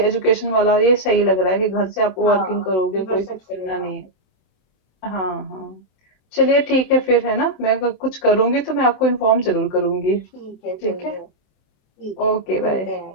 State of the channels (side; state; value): right; late; 27 ms